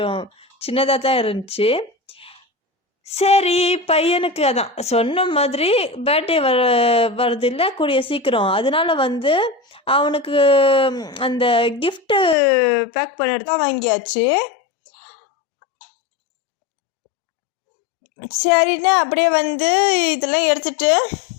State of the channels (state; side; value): drops out; right; at 12.4 s